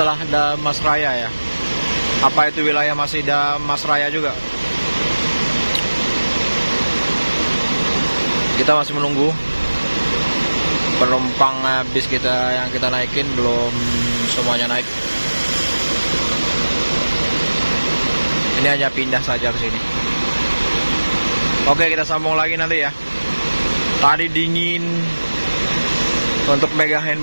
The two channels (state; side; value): inverted; both; correlation -1.00